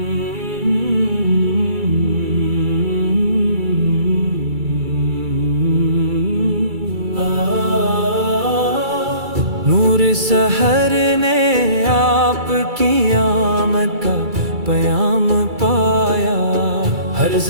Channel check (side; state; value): left; late; 2.3 ms